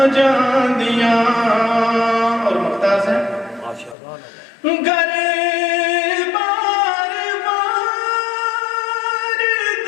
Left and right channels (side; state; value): right; drops out; at 4.0 s